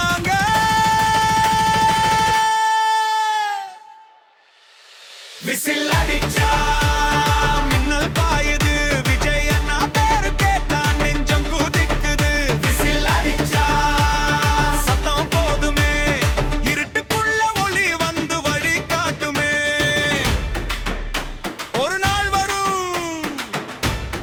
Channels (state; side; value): identical; both; correlation 1.00